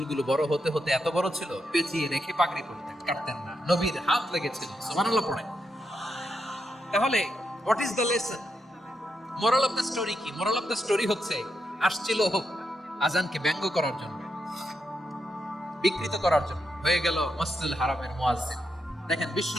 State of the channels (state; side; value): normal; both; correlation 0.83